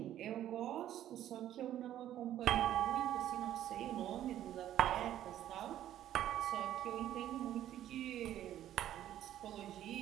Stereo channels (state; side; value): quieter; left; 12.0 dB